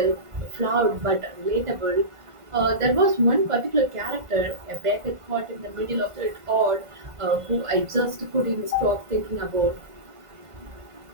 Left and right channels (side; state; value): left; late; 1.5 ms